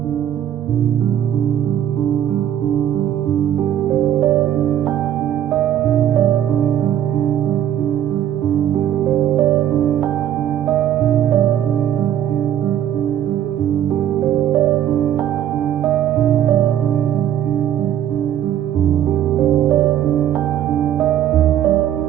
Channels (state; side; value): quieter; left; 11.0 dB